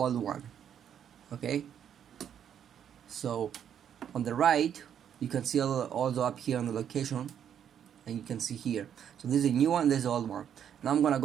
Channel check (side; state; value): left; quieter; 9.0 dB